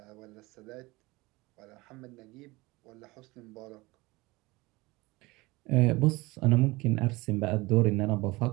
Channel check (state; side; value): quieter; left; 22.2 dB